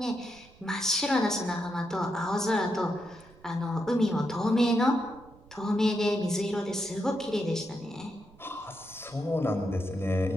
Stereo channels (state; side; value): noise; right; rumble, 25 dB below the sound